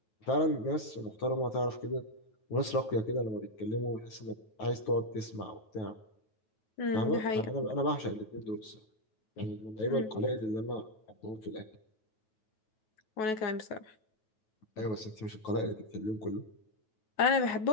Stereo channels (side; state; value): right; late; 9.3 ms